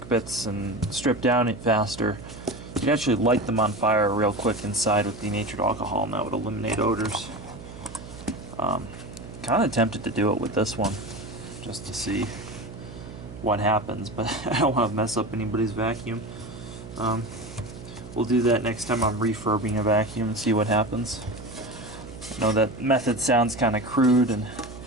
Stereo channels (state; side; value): noise; right; hum, 14 dB below the sound